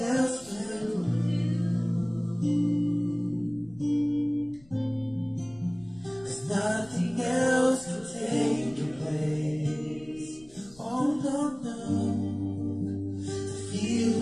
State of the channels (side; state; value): left; noise; rumble, 25 dB below the sound